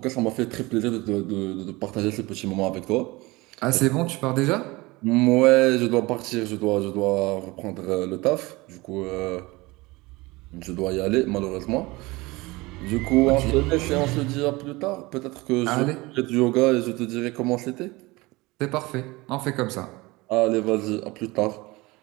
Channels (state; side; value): quieter; left; 22.3 dB